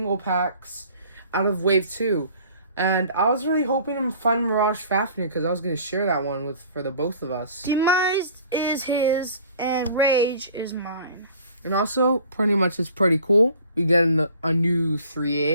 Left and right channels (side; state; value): both; inverted; correlation -0.49